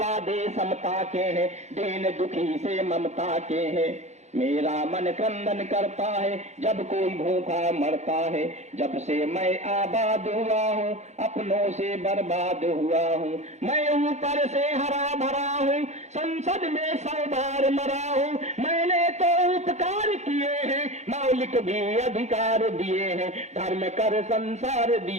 समता के हैं, दीन दुखी से ममता के हैं। मेरा मन क्रंदन करता है जब कोई भूखा मरता है। जब से मैं आबाद हुआ हूँ अपनों से बर्बाद हुआ हूँ। मैं ऊपर से हरा भरा हूँ, संसद में 100 बार मरा हूँ। मैंने तो उपकार किए हैं, मौलिक भी अधिकार दिए हैं। धर्म कर संसार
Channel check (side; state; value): left; late; 0.33 ms